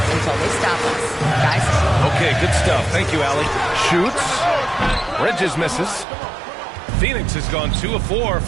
until they stop us. Guys? Okay, good stuff. Thank you, Allie. Shoots. Bridges misses. Phoenix has gone 2 of 4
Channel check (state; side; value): drops out; left; at 6.1 s